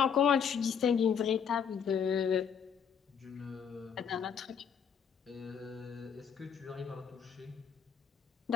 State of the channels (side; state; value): right; quieter; 7.3 dB